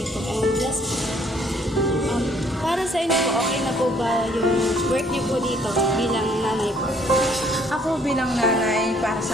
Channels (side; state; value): both; normal; correlation 0.63